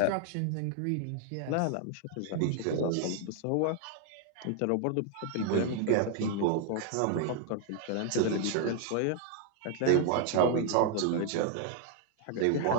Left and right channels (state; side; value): different; both; correlation 0.00